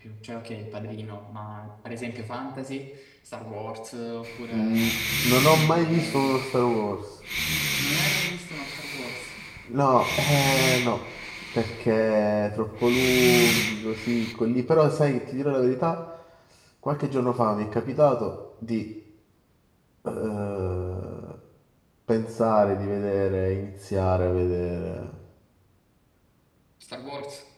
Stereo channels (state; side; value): identical; both; correlation 1.00